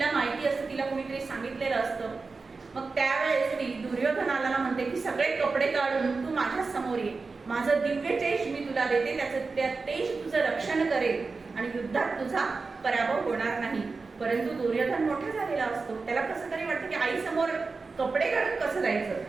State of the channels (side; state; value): left; quieter; 4.2 dB